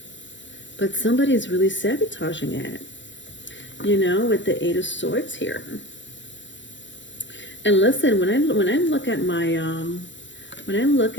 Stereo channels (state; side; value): late; right; 0.54 ms